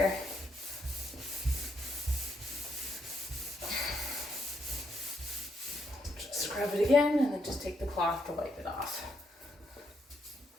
Just scrub it again and then just take the cloth to wipe it off.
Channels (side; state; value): both; normal; correlation 0.77